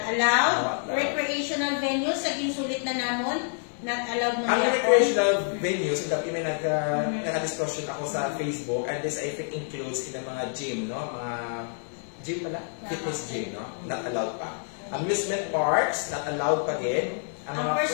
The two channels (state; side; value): silent; right; 60 dB below the other